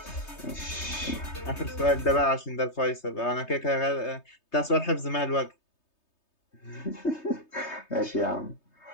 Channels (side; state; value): right; late; 3.3 ms